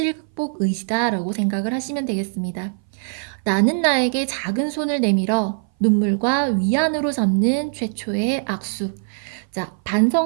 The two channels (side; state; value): left; silent; 60 dB below the other